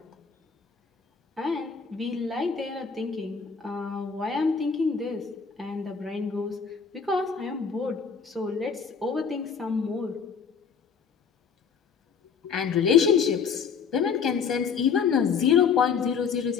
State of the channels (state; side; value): quieter; right; 6.2 dB